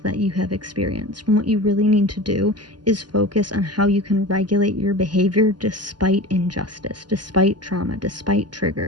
that you have experienced. And what you really need to do is focus on how you can regulate your behavior despite injustice, despite trauma, despite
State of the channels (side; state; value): left; late; 0.70 ms